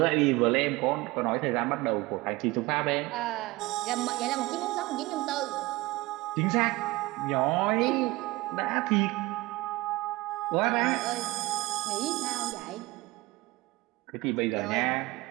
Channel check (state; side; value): quieter; left; 20.7 dB